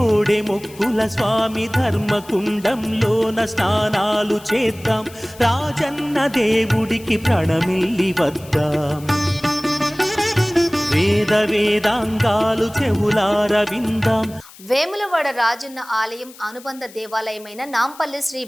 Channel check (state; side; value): noise; left; hiss, 21 dB below the sound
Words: మొక్కుల స్వామి ధర్మకుండంలోన స్నానాలు చేద్దాం, రాజన్న దేవుడికి ప్రణమిల్లి వద్దాం. వేద వేదాంగాలు చెవులార విందాం. వేములవాడ రాజన్న ఆలయం అనుబంధ దేవాలయమైన నాంపల్లి శ్రీ